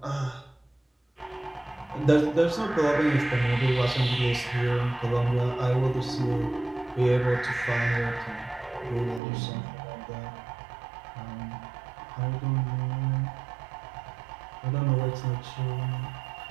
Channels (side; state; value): left; drops out; at 9.2 s